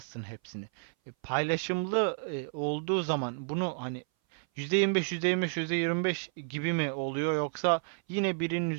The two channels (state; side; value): silent; left; 57 dB below the other